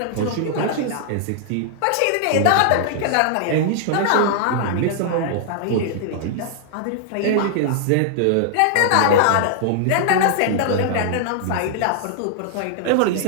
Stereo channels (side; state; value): both; different; correlation -0.01